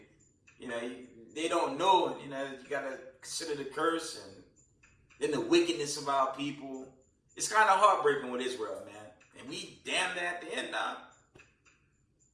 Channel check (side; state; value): both; identical; correlation 1.00